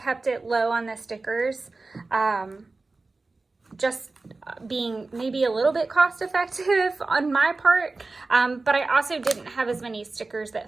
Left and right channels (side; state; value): left; quieter; 3.5 dB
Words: it low on the stickers. Just being maybe a little bit cost effective on my part. But I also didn't have as many stickers